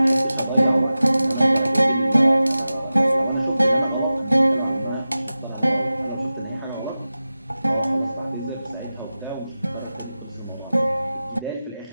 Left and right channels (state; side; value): inverted; both; correlation -0.94